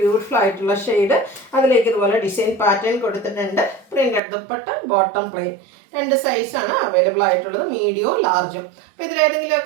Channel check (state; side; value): drops out; left; at 4.2 s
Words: ബ്യൂട്ടിഫുൾ ആയിട്ടുള്ള ഷെയ്ഡ്. അതിലേക്ക് ഇതുപോലെ ഡിസൈൻ പാറ്റേൺ കൊടുത്തിട്ടുണ്ട്. Printed dupatta, bottom plain. 2 സൈസാണ് അവൈലബിൾ ആയിട്ടുള്ളത്. മീഡിയവും ലാർജും. അപ്പോൾ